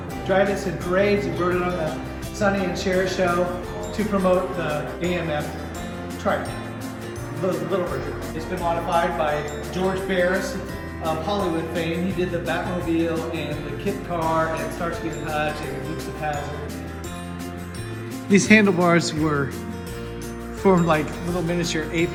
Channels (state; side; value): identical; both; correlation 1.00